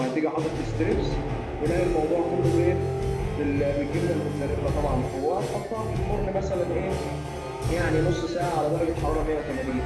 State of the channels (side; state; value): both; identical; correlation 1.00